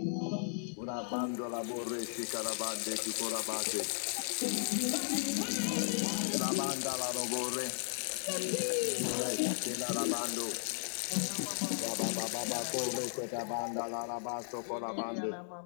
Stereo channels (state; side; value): silent; right; digital silence